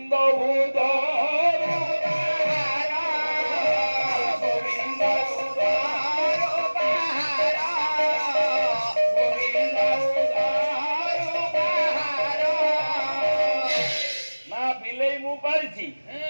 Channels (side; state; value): both; inverted; correlation -1.00